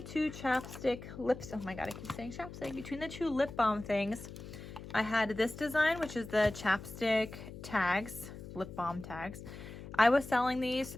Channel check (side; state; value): left; noise; hum, 12 dB below the sound